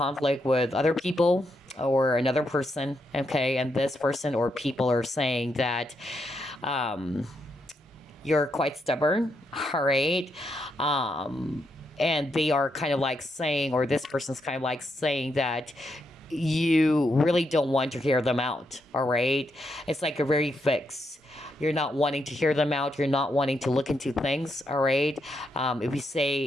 with other people or another person, okay, and this person or people are saying that you're quite stubborn, all right? And they are kind of like saying, or this person's kind of like saying that you really don't want to hear them out, all right? It's like a very fixed. You're not wanting to hear them out. You're not wanting to look into things, all right? If you say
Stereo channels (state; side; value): normal; both; correlation 0.80